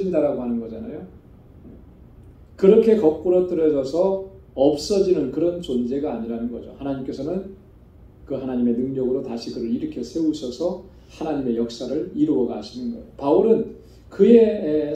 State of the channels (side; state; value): both; identical; correlation 1.00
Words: 하는 거잖아요. 그렇게 거꾸로 떨어져서 없어지는 그런 존재가 아니라는 거죠. 하나님께서는 그 하나님의 능력으로 다시 그를 일으켜 세우셔서 하나님의 역사를 이루어 가시는 거예요. 바울은 그의